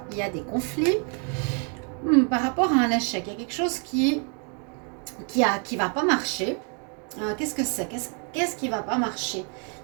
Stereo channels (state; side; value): quieter; left; 37.9 dB